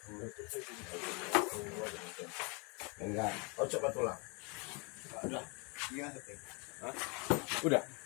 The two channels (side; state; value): right; quieter; 32.0 dB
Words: Enggak. Oh coba tulang. Udah. Udah.